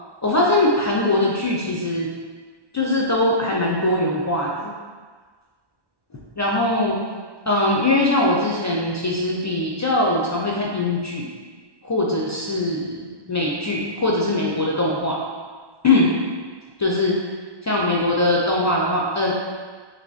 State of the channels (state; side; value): late; left; 1.1 ms